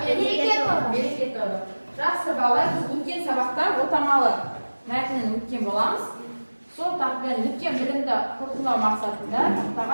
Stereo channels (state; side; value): inverted; both; correlation -1.00